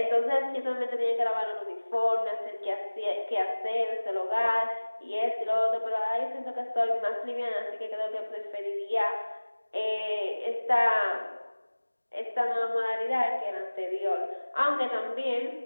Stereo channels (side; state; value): both; inverted; correlation -1.00